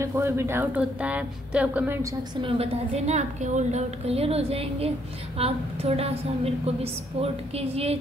कोई भी डाउट होता है तो आप कमेंट सेक्शन में बता देना, आपके ऑल डाउट क्लियर हो जाएंगे। आप थोड़ा सा मेरे को भी सपोर्ट कीजिए,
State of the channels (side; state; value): both; normal; correlation 0.70